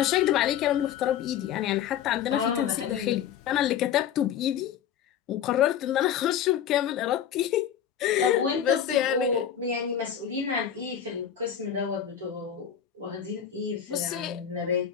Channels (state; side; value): quieter; right; 9.2 dB